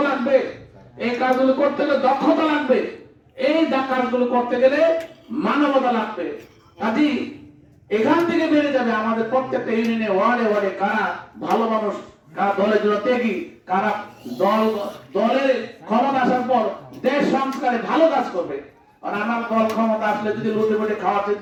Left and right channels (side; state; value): both; identical; correlation 1.00